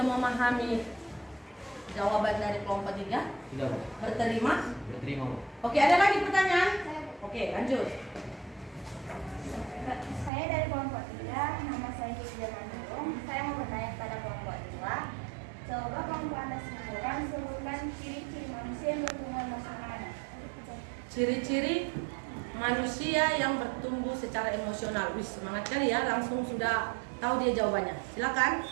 memahami jawaban dari kelompok 3? Tidak Bu. Berterima? Berterima Bu. Oke, ada lagi pertanyaan? Oke, lanjut. Saya dari kelompok 3, nama saya Hidja Manurung. Saya mau bertanya kepada kelompok 2. Coba kelompok Anda sebutkan ciri-ciri manusia yang bertumbuh emosional. Ciri-ciri manusia yang bertumbuh secara emosional. Wih, semangat kali ya, langsung sudah tahu dia jawabannya. Silakan.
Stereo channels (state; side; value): drops out; left; at 10.3 s